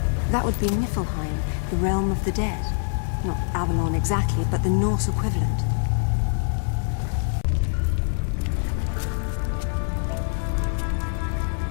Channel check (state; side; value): silent; right; digital silence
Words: That would be Niflheim, the realm of the dead. Not Avalon exactly, but the Norse equivalent.